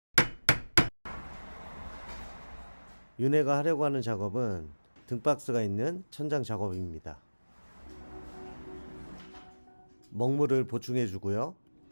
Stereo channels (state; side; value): inverted; both; correlation -1.00